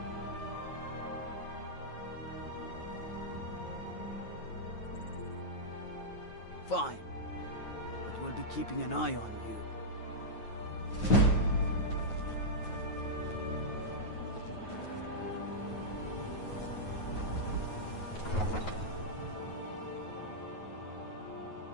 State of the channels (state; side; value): late; right; 9.3 ms